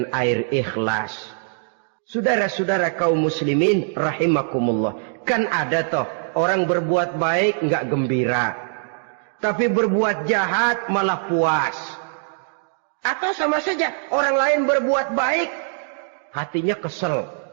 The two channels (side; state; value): left; silent; digital silence